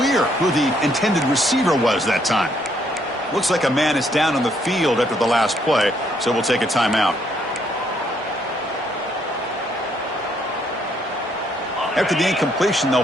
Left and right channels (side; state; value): both; normal; correlation 0.70